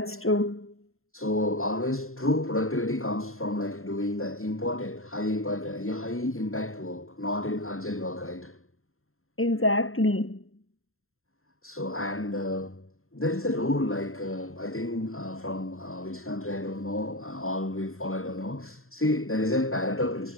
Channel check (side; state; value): right; late; 0.62 ms